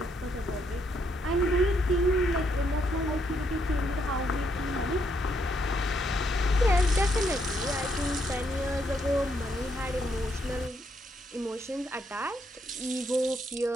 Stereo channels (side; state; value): both; normal; correlation 0.75